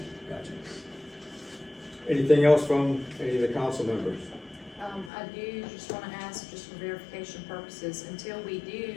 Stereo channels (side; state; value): right; drops out; at 5.1 s